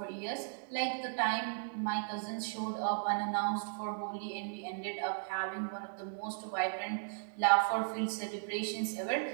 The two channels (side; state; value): left; silent; digital silence